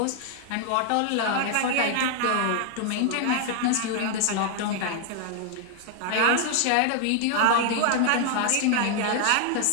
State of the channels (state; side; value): different; both; correlation 0.00